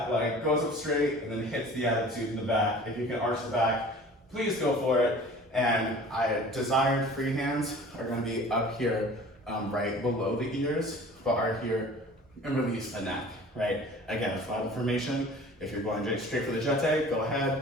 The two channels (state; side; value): normal; both; correlation 0.45